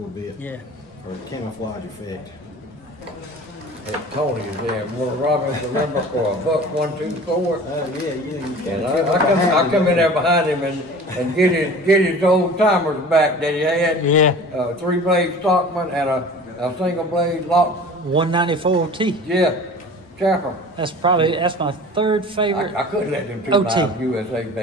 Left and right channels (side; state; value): both; normal; correlation 0.41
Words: bit, Yeah. or camouflage effect. And Tony is there, one Robin, remember, for $1.24. Oh yeah, you And I come in there behind him and get his old timers back that he had. Yeah. 3-blade Stockman and a single blade lock. 194 T. Yeah, Chapel. That's my third favorite. I couldn't let them two OT. knives USA